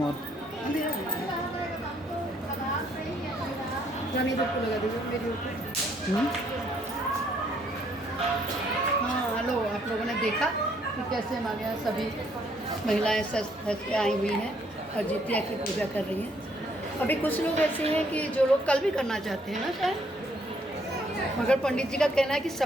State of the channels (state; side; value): normal; both; correlation 0.67